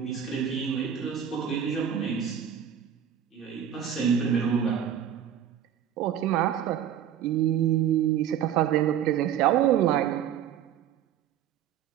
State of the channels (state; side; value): quieter; left; 9.5 dB